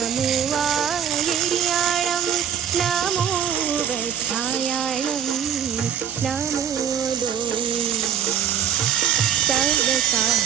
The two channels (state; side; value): quieter; left; 8.9 dB